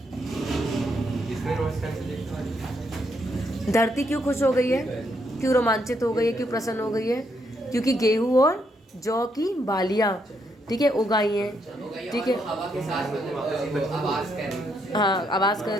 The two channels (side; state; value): both; normal; correlation 0.76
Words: धरती क्यों खुश हो गई है, क्यों रोमांचित हो गई है, क्यों प्रसन्न हो गई है, क्योंकि गेहूं और जौ की बालियां, ठीक है, उगाई हैं। ठीक है, हाँ आवाज कर